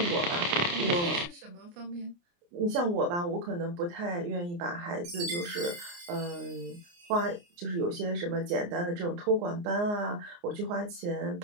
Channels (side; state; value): left; late; 29 ms